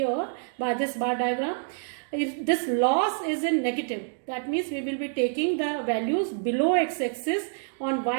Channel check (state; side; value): silent; left; digital silence